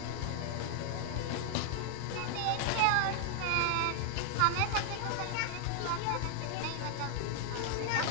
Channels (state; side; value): different; both; correlation 0.00